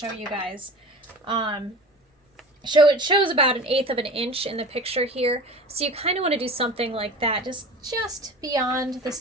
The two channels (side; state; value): both; normal; correlation 0.36